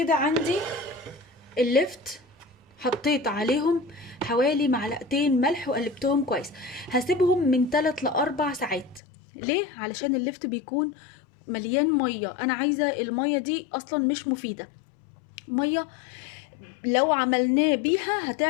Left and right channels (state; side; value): drops out; right; at 9.0 s